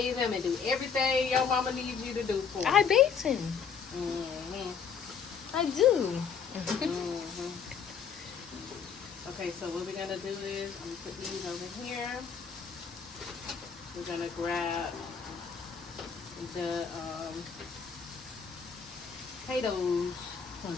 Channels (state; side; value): quieter; right; 6.5 dB